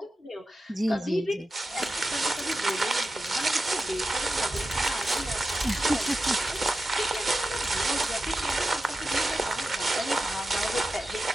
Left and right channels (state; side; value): normal; both; correlation 0.91